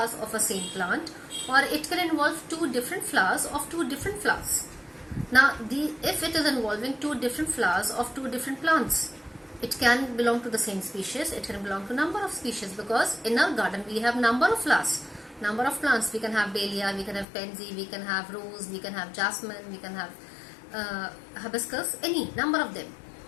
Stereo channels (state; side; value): drops out; right; at 17.2 s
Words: of a same plant, or it can involve two different flowers of two different flowers. Now if it is involving two different flowers of two different plants, it can belong to the same species, it can belong to number of species, because in our garden we have number of flowers, number of plants. We can have dahlia, we can have pansy, we can have rose, we can have jasmine, we can have hibiscus, any number of them.